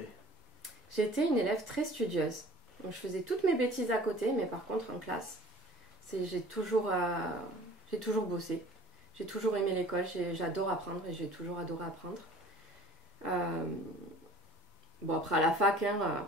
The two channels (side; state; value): both; normal; correlation 0.47